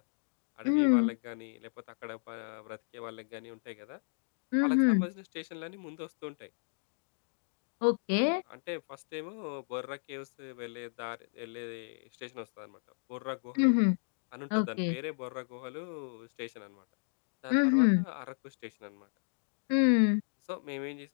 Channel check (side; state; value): right; silent; digital silence